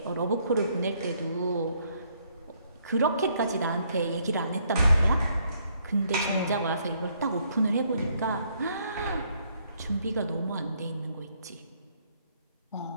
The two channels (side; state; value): both; inverted; correlation -0.69